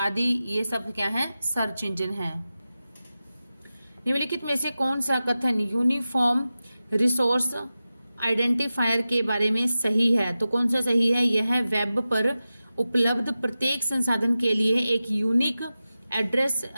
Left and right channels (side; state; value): both; inverted; correlation -0.94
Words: ये सब क्या है? सर्च इंजन है। निम्नलिखित में से कौन सा कथन यूनिफॉर्म रिसोर्स आइडेंटिफायर के बारे में सही है? तो कौन सा सही है? यह वेब पर उपलब्ध प्रत्येक संसाधन के लिए एक यूनिक एड्रेस